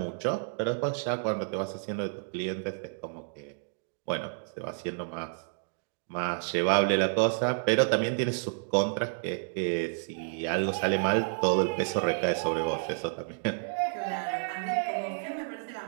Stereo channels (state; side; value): silent; left; digital silence